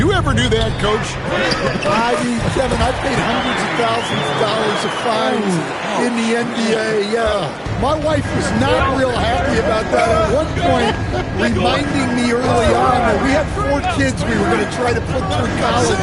ever do that, Coach? I mean, Kevin, I've paid hundreds of thousands of dollars of fines in the NBA. Yeah. My wife was not real happy about that. At one point, reminding me early on that we had 4 kids we were going to try to put through college.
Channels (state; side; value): identical; both; correlation 1.00